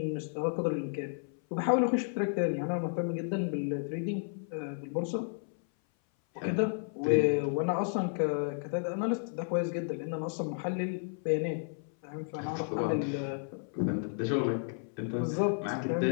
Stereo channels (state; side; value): silent; right; 56 dB below the other